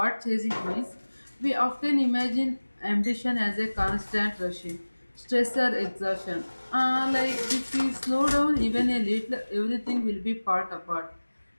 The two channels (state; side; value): inverted; both; correlation -1.00